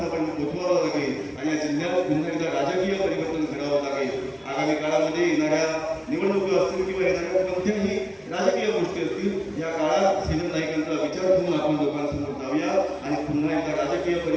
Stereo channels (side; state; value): both; identical; correlation 1.00